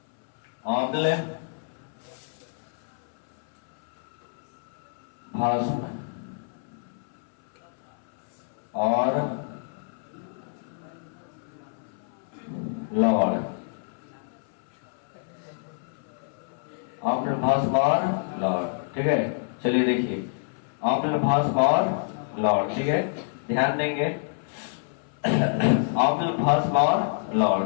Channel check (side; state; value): right; silent; 60 dB below the other